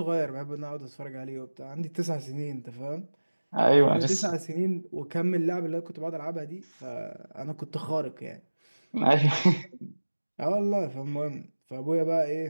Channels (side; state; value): both; inverted; correlation -1.00